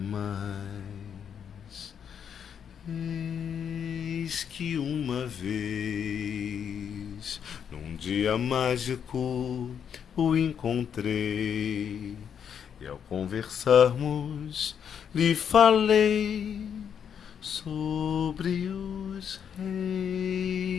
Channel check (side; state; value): right; quieter; 8.0 dB